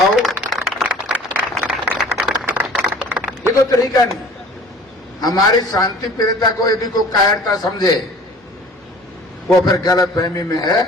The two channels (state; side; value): normal; both; correlation 0.47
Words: ये तो तरीका नहीं। हमारी शांति प्रियता को यदि कोई कायरता समझे, वो फिर गलत फहमी में है।